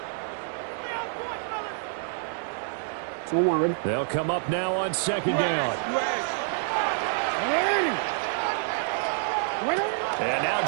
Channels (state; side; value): silent; left; digital silence